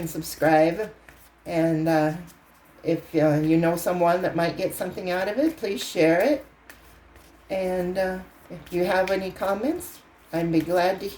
subscribe. And if you know someone that might get something out of it, please share it. And If you have any comments, I'd be glad to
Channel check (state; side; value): identical; both; correlation 1.00